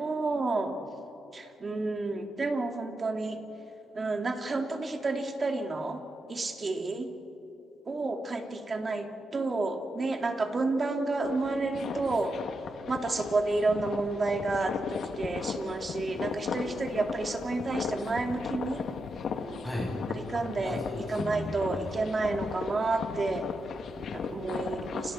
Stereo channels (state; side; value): normal; both; correlation 0.86